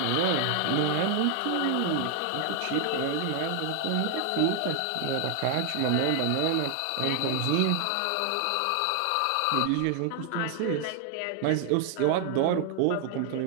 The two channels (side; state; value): both; different; correlation 0.00